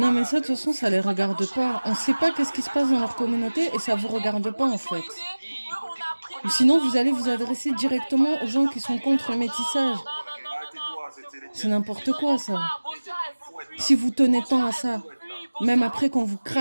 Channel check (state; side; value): inverted; both; correlation -1.00